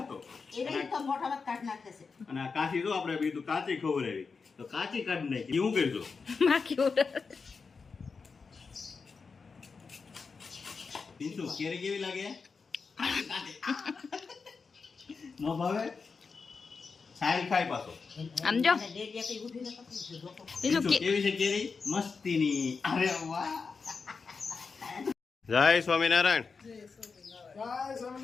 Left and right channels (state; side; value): quieter; right; 4.9 dB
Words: એને તો મોઢામાં કાઢી નાખે છે. અને આ કાચી જો આપણે બીજું કાચી ખવડાવી તો કાચી કાઢી નાખી. હું કરજો માખી ઉડે. પિન્ટુ કેરી કેવી લાગે? નો ભાવે? સારી ખાય પાછો. આમ જો. અને ડેડિયા કઈ ઉઠીને પકડી છે જોકો. બીજું પિન્ટુ કેવી છે કેરી? મસ્તીની. અરે વાહ. જય સ્વામિનારાયણ. જય